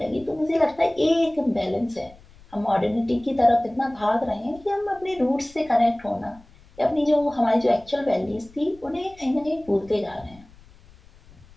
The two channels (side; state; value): left; noise; rumble, 25 dB below the sound